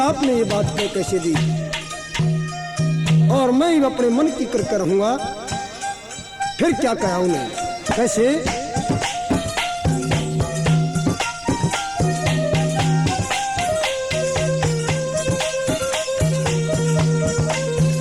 ये बात को कैसे दी, और मैं अपने मन की कर रहूंगा। फिर क्या कहा उन्हें, कैसे?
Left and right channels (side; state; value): both; identical; correlation 1.00